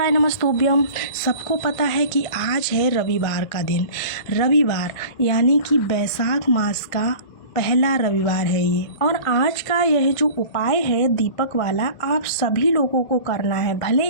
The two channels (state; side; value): late; right; 1.5 ms